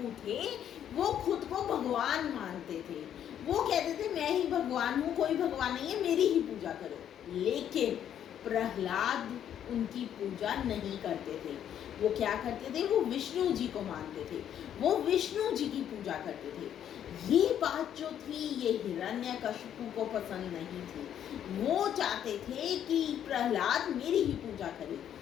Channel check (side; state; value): right; quieter; 9.9 dB